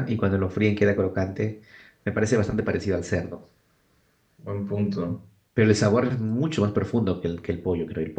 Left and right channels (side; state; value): both; identical; correlation 1.00